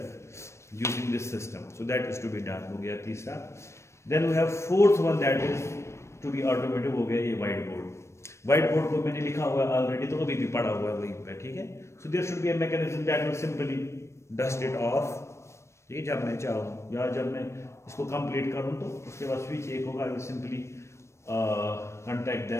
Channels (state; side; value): late; right; 0.13 ms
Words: using this system. So that is to be done, हो गया तीसरा। Then we have fourth one that is to be automated, हो गया ये व्हाइट बोर्ड। व्हाइट बोर्ड को मैंने लिखा हुआ है ऑलरेडी, तो अभी भी पढ़ा हुआ है वहीं पे, ठीक है। So there should be a mechanism that will simply dust it off. ये जब मैं चाहूँ या जब मैं इसको कंप्लीट करूँ तो उसके बाद स्विच एक होगा, I will simply contact